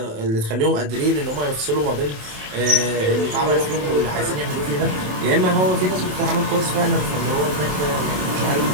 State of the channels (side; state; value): left; late; 27 ms